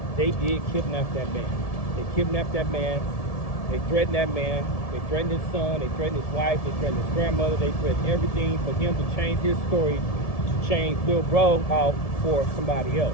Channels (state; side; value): late; right; 1.7 ms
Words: They did kidnap that man. They kidnapped that man. They threatened that man. They threatened his son. They threatened his wife. They threatened his grandmother. They threatened everything for him to change his story, to change Lil Bro out for somebody